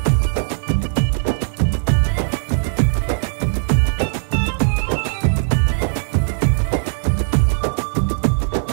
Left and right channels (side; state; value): left; silent; digital silence